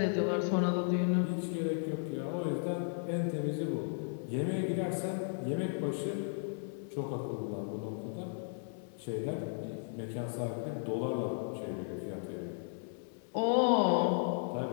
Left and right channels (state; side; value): silent; right; digital silence